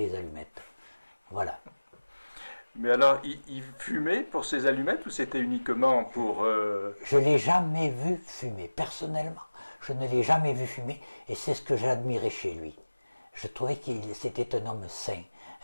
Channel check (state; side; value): inverted; both; correlation -1.00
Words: allumettes. Voilà. Mais alors, il fumait pour ses allumettes ou c'était uniquement pour... Je ne l'ai jamais vu fumer, personnellement. Je ne l'ai jamais vu fumer, et c'est ce que j'admirais chez lui. Je trouvais qu'il c'était un homme sain,